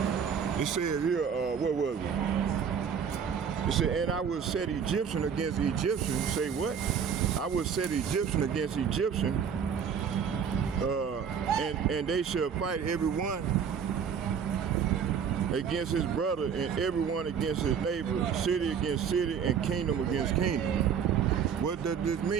It says here, what was it? It said, and I will set Egyptian against Egyptian. Say what? I will set Egyptian against Egyptian, and they shall fight everyone against his brother, and everyone against his neighbor, city against city, and kingdom against kingdom. What does this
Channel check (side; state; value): left; quieter; 7.2 dB